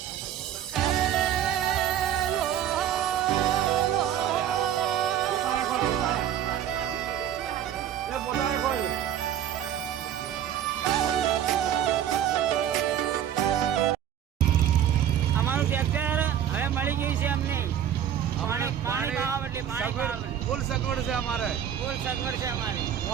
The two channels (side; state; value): left; quieter; 10.1 dB